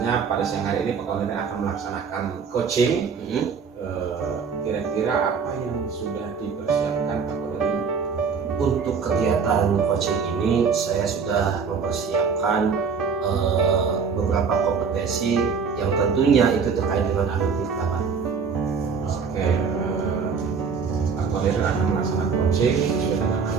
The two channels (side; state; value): left; quieter; 5.8 dB